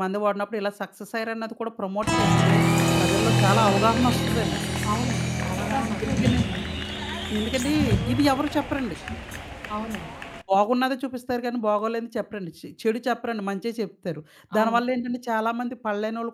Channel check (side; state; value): both; identical; correlation 1.00